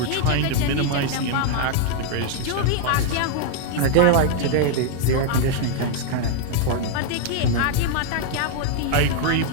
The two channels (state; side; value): different; both; correlation -0.01